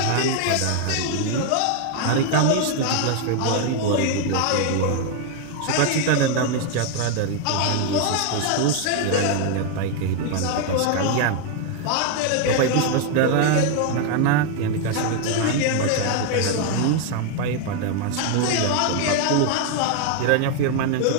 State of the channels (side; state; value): both; different; correlation 0.00